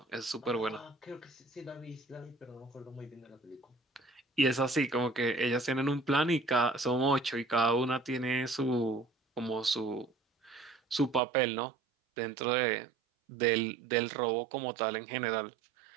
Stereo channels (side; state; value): left; drops out; at 11.2 s